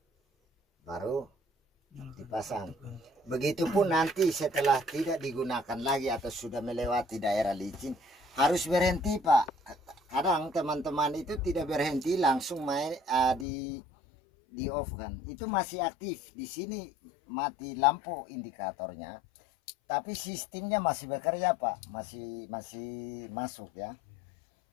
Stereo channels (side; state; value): right; drops out; at 13.5 s